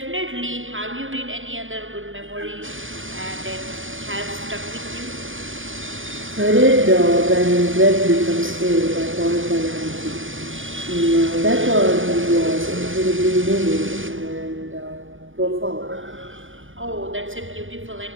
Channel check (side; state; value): left; late; 0.57 ms